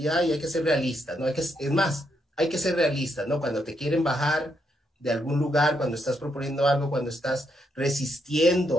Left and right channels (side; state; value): both; normal; correlation 0.78